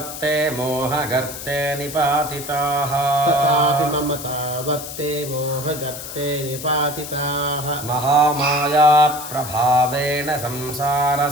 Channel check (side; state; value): left; noise; hiss, 10 dB below the sound